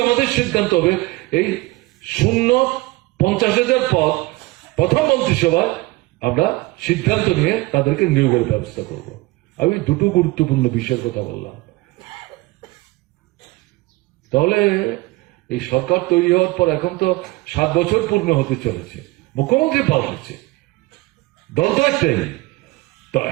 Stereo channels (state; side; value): quieter; left; 21.7 dB